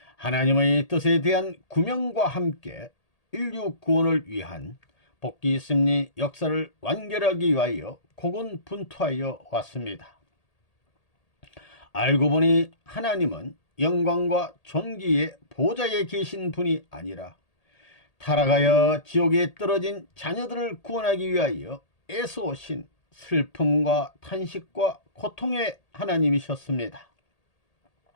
하나님의 뜻에 대한 구명과 함께 인류 구원을 위한 복귀 승리 역사를 완결하기 위하여 고군분투하여 왔습니다. 알고 보니 하나님은 영광과 존귀의 보좌에 계신 분이 아니라 타락하여 지옥에 떨어진 자녀들을 구원하기 위하여 애써오신 슬픔과 탄식과 고통의 하나님이셨습니다.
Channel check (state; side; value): late; right; 1.8 ms